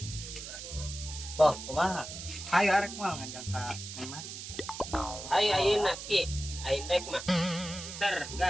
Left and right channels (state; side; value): noise; right; hiss, 9 dB below the sound